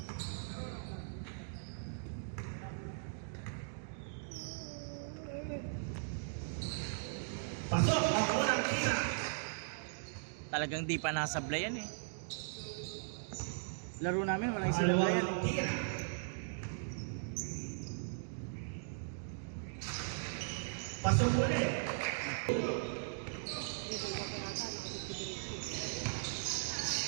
Pasok ang unang tira. Talagang di pa nasablay yan eh. Laro namin walang sablay yan Pangalawang eh. tira. Pasok ulit.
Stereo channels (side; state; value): left; silent; digital silence